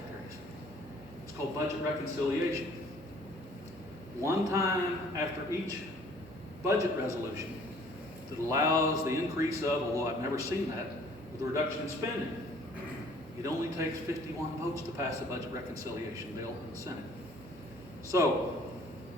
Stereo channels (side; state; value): both; normal; correlation 0.56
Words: It's called budget reconciliation. One time after each budget resolution that allows the increase of, although I've never seen that, with a reduction in spending. It only takes 51 votes to pass a budget reconciliation bill in the Senate. So,